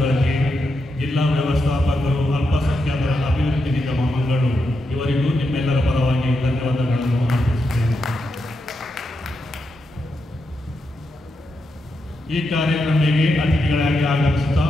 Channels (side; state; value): both; normal; correlation 0.85